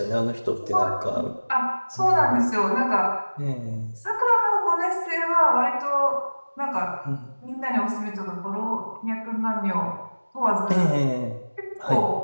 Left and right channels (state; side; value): inverted; both; correlation -1.00